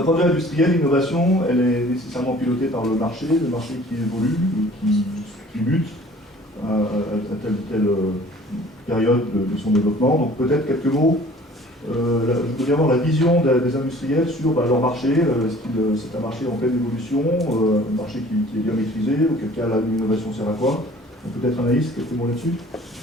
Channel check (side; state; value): both; normal; correlation 0.50